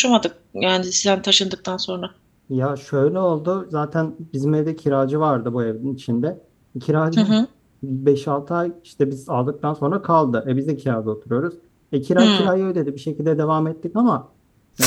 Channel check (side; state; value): both; identical; correlation 1.00